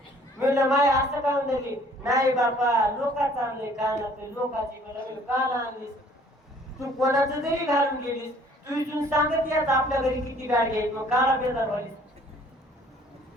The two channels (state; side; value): normal; both; correlation 0.57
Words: म्हणलं माय असं का म्हणली नाही बापा लोकांचं आणलंय कानात लोकांची कान आणलीस तू कोणाचं जरी घालून गेलीस तू इथून सांगत याच आपल्या घरी किती गाडी आहेत मग काला बेजार व्हालीस